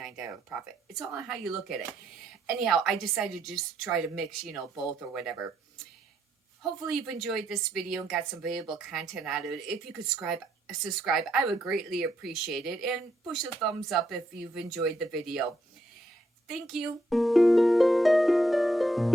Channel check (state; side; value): normal; both; correlation 0.76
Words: profit. It's all on how you look at it. Anyhow, I decided to just try to mix, you know, both or whatever. Hopefully you've enjoyed this video and got some valuable content out of it. If you could subscribe, I would greatly appreciate it, and push a thumbs up if you've enjoyed the video. Thank you.